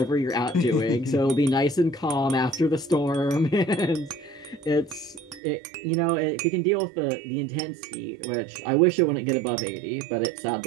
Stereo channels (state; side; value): drops out; left; at 5.4 s